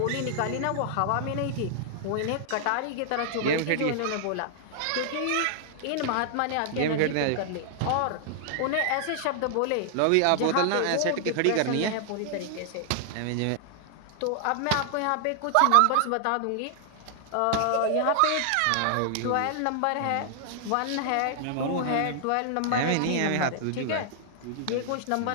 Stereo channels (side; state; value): both; different; correlation -0.01